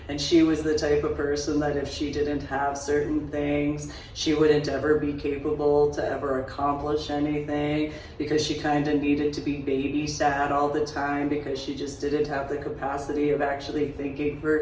And she was the type of person that if she didn't have certain things, she wouldn't ever be capable to ever accomplish anything, because she kind of needed to be babysat all the time because she just didn't have the capacity of actually thinking for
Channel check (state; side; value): identical; both; correlation 1.00